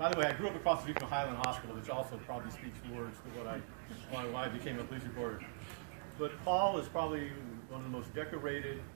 the way, I grew up across the street from Highland Hospital, which also probably speaks words to why I became a police reporter. But Paul is probably one of the most decorated,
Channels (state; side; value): silent; left; digital silence